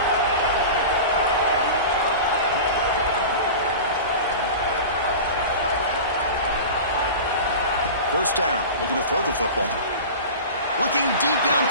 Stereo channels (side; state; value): both; inverted; correlation -0.32